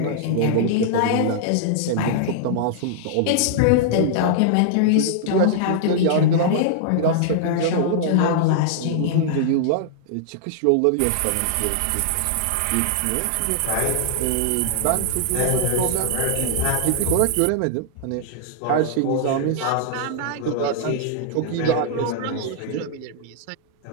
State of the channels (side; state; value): both; different; correlation -0.01